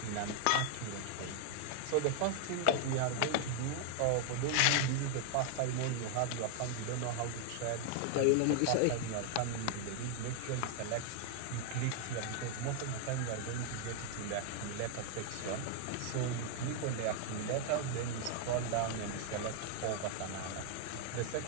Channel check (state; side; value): different; both; correlation 0.00